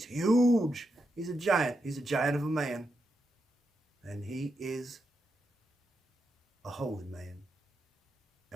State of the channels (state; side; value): normal; both; correlation 0.85